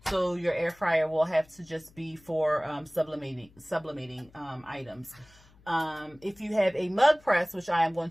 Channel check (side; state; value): left; noise; hum, 27 dB below the sound